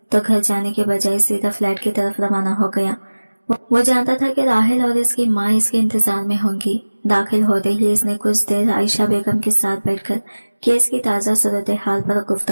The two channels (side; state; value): both; inverted; correlation -1.00